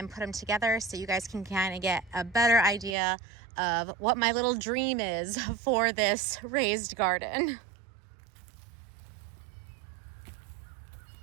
put them together so you guys can kind of get a better idea of what my little dream is for this raised garden.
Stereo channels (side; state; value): left; drops out; at 3.0 s